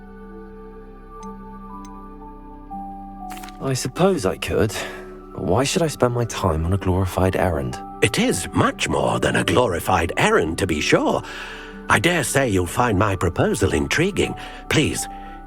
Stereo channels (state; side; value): identical; both; correlation 1.00